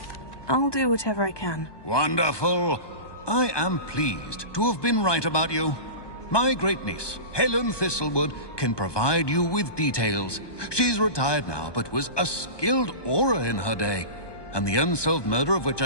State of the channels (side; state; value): right; late; 1.2 ms